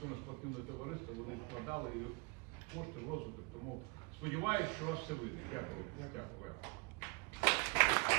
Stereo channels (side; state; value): left; quieter; 29.2 dB